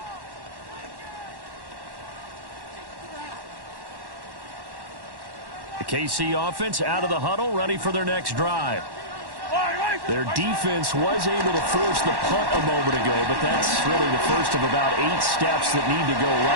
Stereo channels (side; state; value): left; late; 1.1 ms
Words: The KC offense out of the huddle, ready for their next drive. Their defense was able to force the punt a moment ago, but that's really the first of about 8 steps that need to go